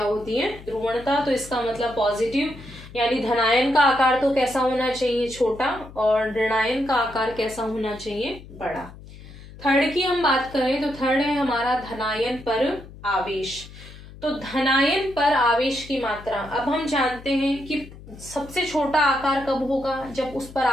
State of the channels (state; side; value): noise; left; hum, 17 dB below the sound